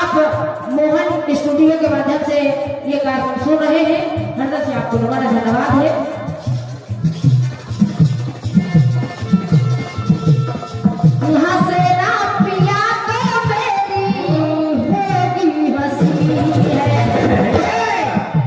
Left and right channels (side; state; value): both; identical; correlation 1.00